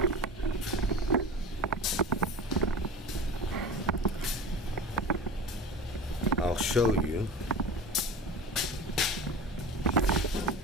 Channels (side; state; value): both; normal; correlation 0.34